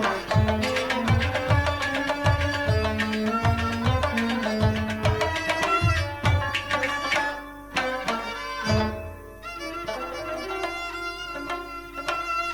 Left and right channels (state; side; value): identical; both; correlation 1.00